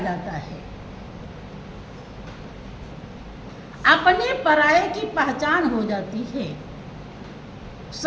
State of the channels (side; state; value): both; identical; correlation 1.00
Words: है। अपने पराये की पहचान हो जाती है,